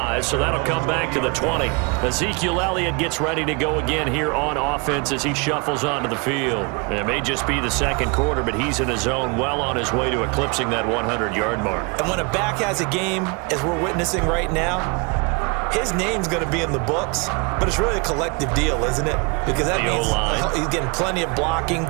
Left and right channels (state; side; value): quieter; left; 30.8 dB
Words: so that'll come back to the 20. Ezekiel Elliott gets ready to go again here on offense as he shuffles onto the field. It may just be the second quarter, but he's in his zone, well on his way to eclipsing that 100-yard mark. And when a back has a game, as we're witnessing right now, his name's going to be in the books, but it's really a collective deal, isn't it? Because that means he's getting plenty of blocking,